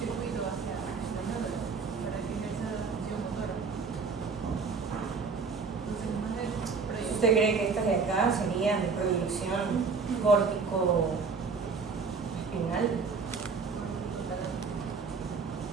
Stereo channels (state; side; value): quieter; left; 4.9 dB